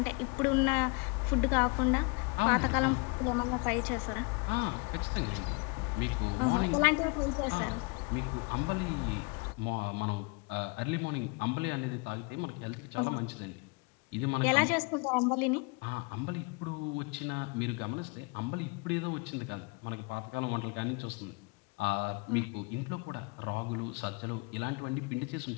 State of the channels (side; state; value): right; quieter; 30.1 dB